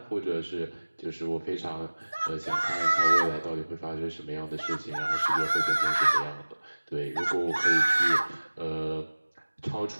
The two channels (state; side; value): inverted; both; correlation -1.00